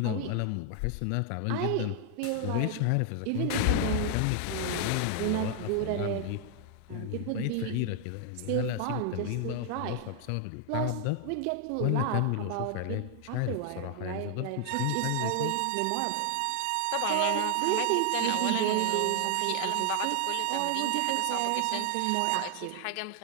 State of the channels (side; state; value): both; different; correlation 0.00